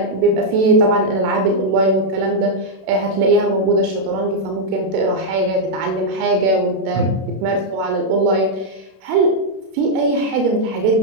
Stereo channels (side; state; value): left; late; 32 ms